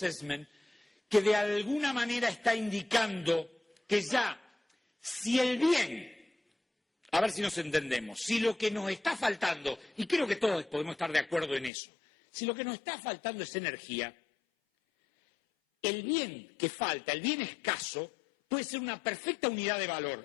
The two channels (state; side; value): drops out; right; at 11.7 s